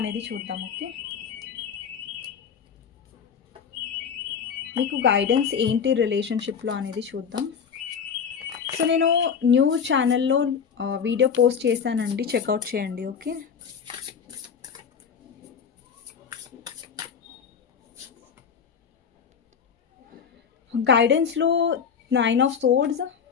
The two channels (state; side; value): quieter; right; 6.8 dB